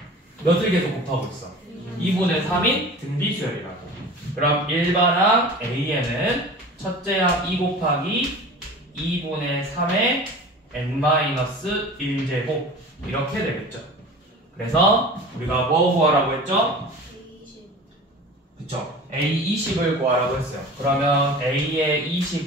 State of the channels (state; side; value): normal; both; correlation 0.38